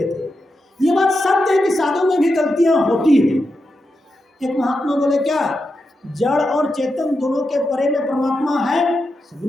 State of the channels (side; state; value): both; normal; correlation 0.87